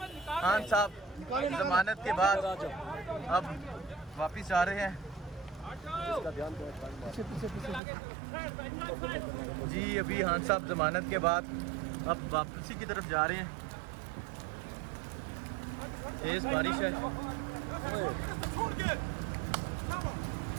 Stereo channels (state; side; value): drops out; left; at 7.8 s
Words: खान साहब जमानत के बाद अब वापिस आ रहे हैं। जी अभी खान साहब जमानत के बाद अब वापसी की तरफ जा रहे हैं। तेज बारिश है।